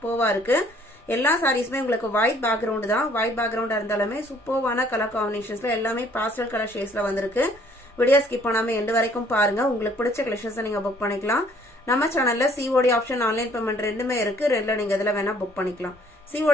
இருக்கு. எல்லா சாரீஸ்மே உங்களுக்கு ஒயிட் பேக்ரவுண்ட் தான். ஒயிட் பேக்ரவுண்டா இருந்தாலுமே சூப்பர்வான கலர் காம்பினேஷன்ஸ்ல எல்லாமே பாஸ்டல் கலர் ஷேட்ஸ்ல வந்திருக்கு. வீடியோ ஸ்கிப் பண்ணாம எண்ட் வரைக்கும் பாருங்க. உங்களுக்கு பிடிச்ச கலெக்ஷன்ஸ் நீங்க புக் பண்ணிக்கலாம். நம்ம சேனல்ல COD ஆப்ஷன் ஆன்லைன் பேமெண்ட் ரெண்டுமே இருக்கு. ரெண்டுல நீங்க இதல வேணா புக் பண்ணிக்கலாம்.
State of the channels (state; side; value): normal; both; correlation 0.59